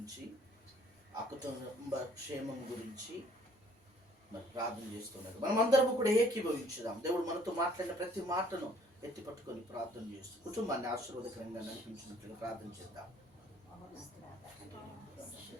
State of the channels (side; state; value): both; normal; correlation 0.59